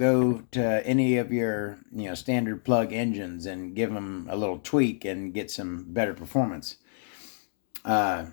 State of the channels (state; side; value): silent; right; digital silence